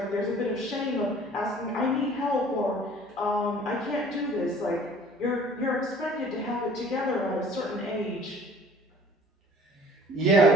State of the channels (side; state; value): both; normal; correlation 0.51